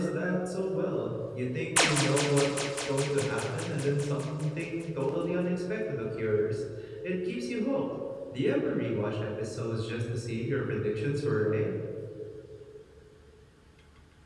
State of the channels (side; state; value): both; identical; correlation 1.00